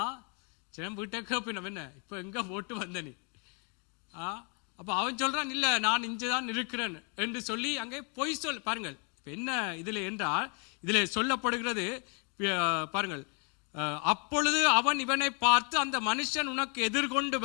வீட்டை கேப்பினம், என்ன இப்ப எங்க போட்டு வந்த நீ? அப்ப அவன் சொல்றான், இல்ல நான் இங்கதான் இருக்கிறேன் என்று சொல்லி அங்கே பொய் சொல். பாருங்கள் என்ன இதுல என்றால், இதுல சொல்லப்படுகிறது பாருங்கள், அப்பொழுது அவன் இவனை பார்த்து, அந்த மனுஷன் உனக்கு எதிர்கொண்டு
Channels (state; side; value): quieter; right; 36.8 dB